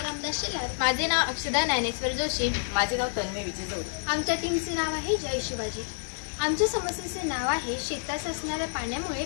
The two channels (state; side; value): silent; right; digital silence